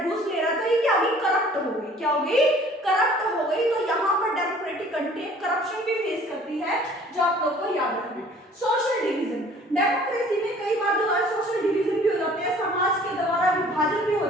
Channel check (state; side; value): normal; both; correlation 0.52